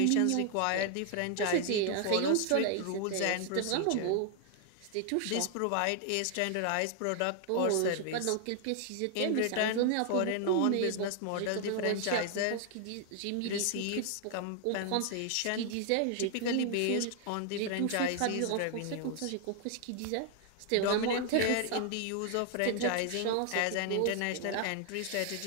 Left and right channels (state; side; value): different; both; correlation 0.00